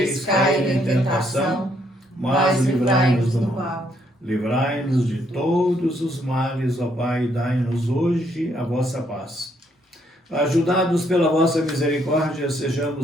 cair em tentação, mas livrai-nos do mal. Livrai-nos de todos os males, ó Pai, e dai-nos hoje a vossa paz. Ajudados pela vossa misericórdia,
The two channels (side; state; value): both; normal; correlation 0.71